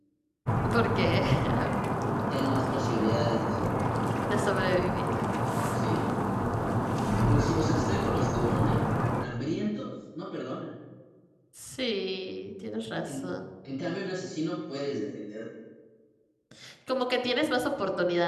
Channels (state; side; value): identical; both; correlation 1.00